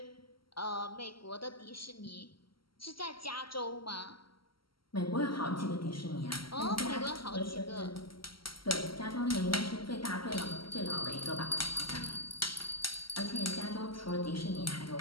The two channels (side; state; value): right; late; 0.74 ms